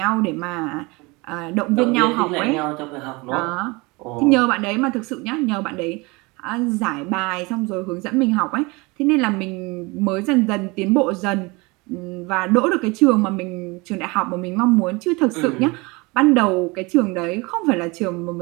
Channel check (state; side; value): quieter; left; 25.6 dB